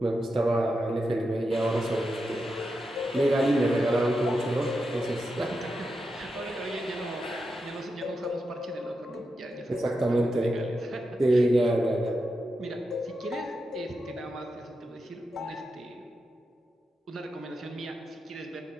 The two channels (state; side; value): normal; both; correlation 0.88